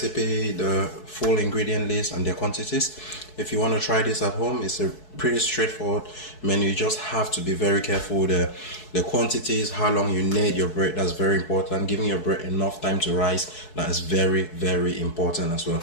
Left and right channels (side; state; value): right; late; 4.7 ms